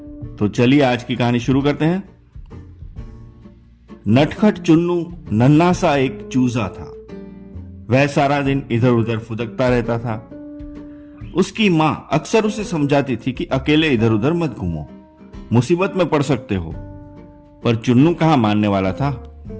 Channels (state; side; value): identical; both; correlation 1.00